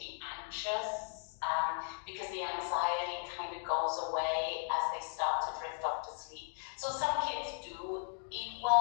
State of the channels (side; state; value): right; silent; 53 dB below the other